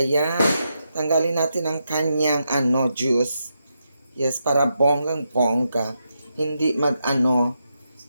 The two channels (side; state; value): both; inverted; correlation -0.84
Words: Tanggalin natin ang kanyang juice. Yes, para bonggang-bongga. Hindi